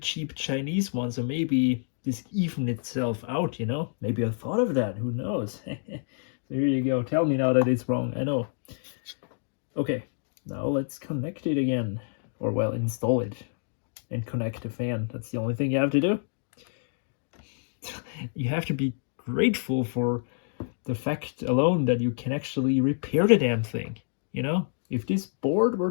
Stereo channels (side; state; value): right; silent; digital silence